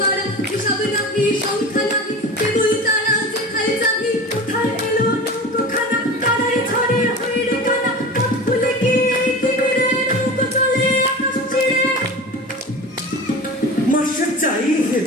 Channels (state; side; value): normal; both; correlation 0.33